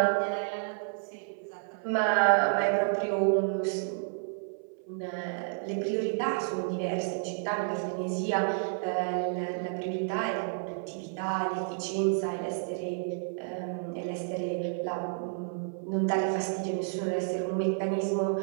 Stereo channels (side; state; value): left; silent; 57 dB below the other